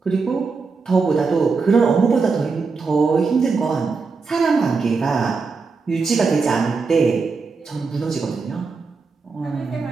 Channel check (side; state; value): left; quieter; 4.6 dB